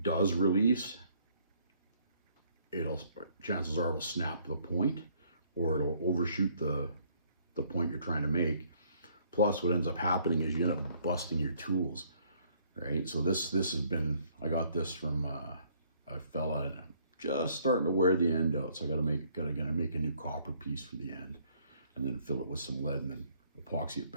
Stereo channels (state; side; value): inverted; both; correlation -0.64